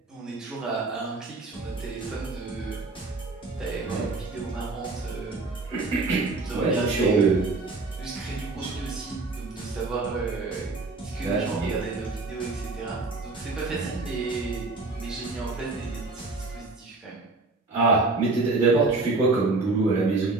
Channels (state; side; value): quieter; left; 3.5 dB